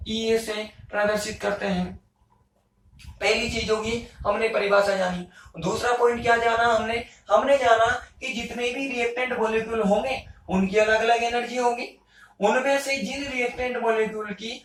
ई से प्रदर्शित करते हैं। पहली चीज होगी हमने परिभाषा जानी। दूसरा पॉइंट क्या जाना हमने जाना कि जितने भी रिएक्टेंट मॉलिक्यूल होंगे उनकी अलग अलग एनर्जी होगी। उनमें से जिन रिएक्टेंट मॉलिक्यूल की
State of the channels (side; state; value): both; identical; correlation 1.00